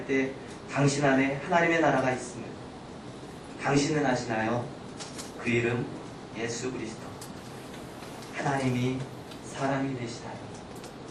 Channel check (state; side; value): identical; both; correlation 1.00